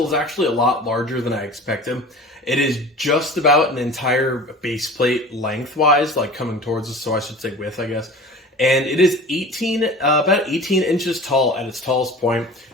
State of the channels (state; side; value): normal; both; correlation 0.39